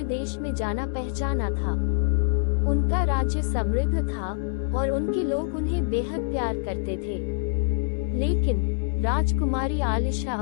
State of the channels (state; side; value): silent; right; digital silence